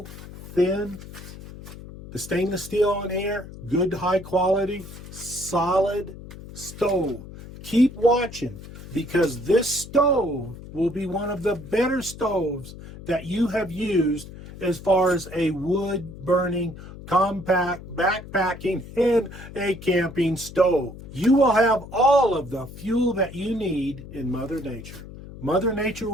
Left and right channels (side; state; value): left; noise; hum, 14 dB below the sound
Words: thin? The stainless steel on here, good high quality, solid stove. Keep watching, because this stove will be one of the better stoves that you have used as far as a wood burning, compact, backpacking, and a camping stove. You will have all of the fuel that you need in Mother Nature. Mother Nature